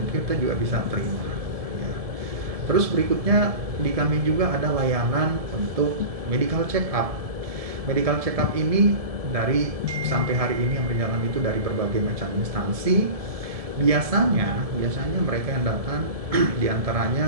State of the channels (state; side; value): late; left; 1.7 ms